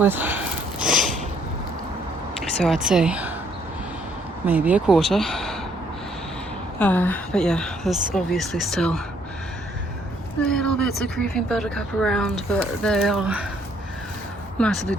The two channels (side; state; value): both; normal; correlation 0.66